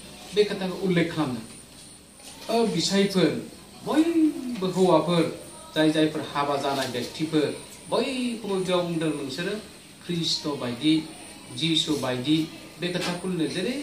बे खोथाखौ उल्लेख खालामदों। बिसायफोर बयबो हौवाफोर जायफोर हाबा जानाय व्यक्तिफोर बयखौबो बेयाव बुंदों नोंसोरो ख्रिस्ट' बायदि, जिसु बायदि बे खोथाखौ जेरै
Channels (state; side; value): identical; both; correlation 1.00